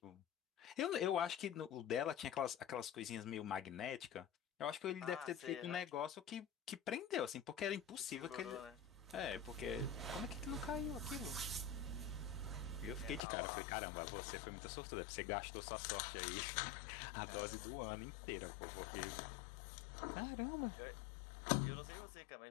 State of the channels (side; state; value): right; drops out; at 13.2 s